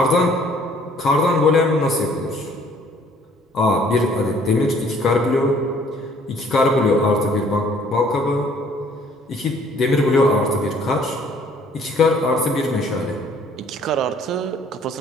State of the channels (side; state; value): both; normal; correlation 0.59